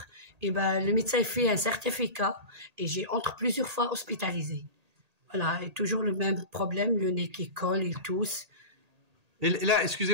Et ben, le médecin fait un certificat, et j'ai entre plusieurs fois hospitalisé. Voilà, et toujours le même problème, le nez qui colle, il tousse. Et là,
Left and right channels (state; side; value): late; left; 1.8 ms